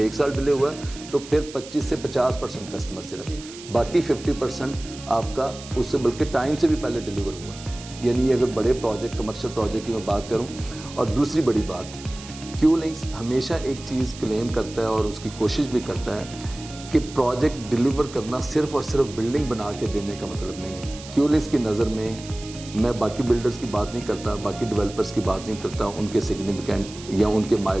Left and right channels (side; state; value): right; noise; hiss, 16 dB below the sound